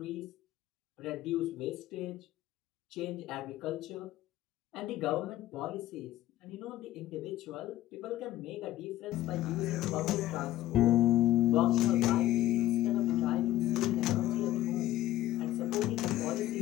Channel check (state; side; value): quieter; right; 14.2 dB